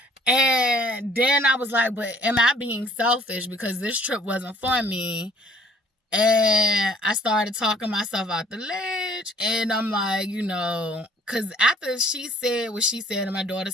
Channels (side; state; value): both; normal; correlation 0.57